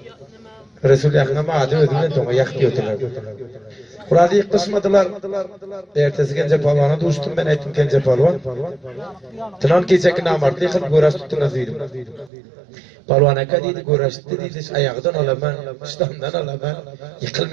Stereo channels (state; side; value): drops out; left; at 12.3 s